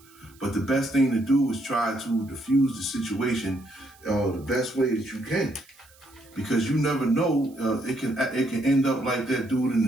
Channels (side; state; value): right; noise; hiss, 28 dB below the sound